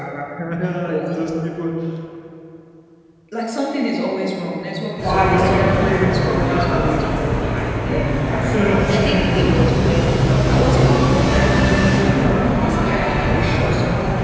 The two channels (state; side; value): identical; both; correlation 1.00